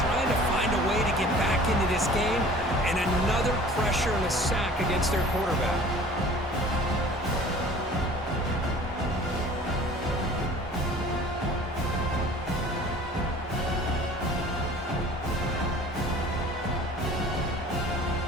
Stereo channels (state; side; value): normal; both; correlation 0.47